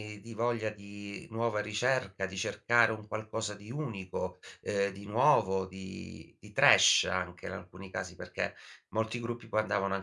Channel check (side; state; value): both; identical; correlation 1.00